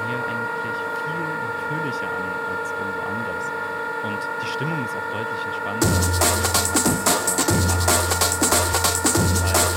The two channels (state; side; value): identical; both; correlation 1.00